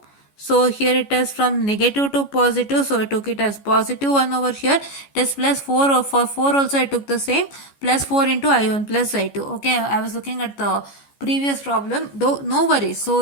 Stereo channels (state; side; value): late; right; 14 ms